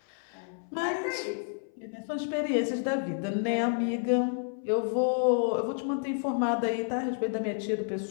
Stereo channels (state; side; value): silent; right; 57 dB below the other